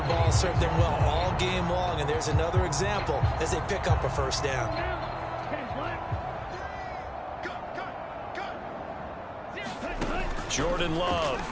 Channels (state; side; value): identical; both; correlation 1.00